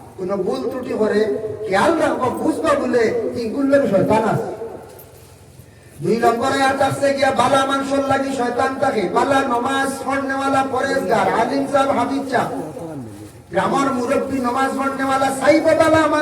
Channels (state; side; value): identical; both; correlation 1.00